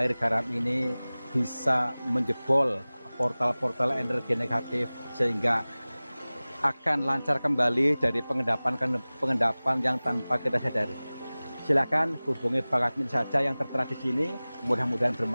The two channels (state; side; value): inverted; both; correlation -0.99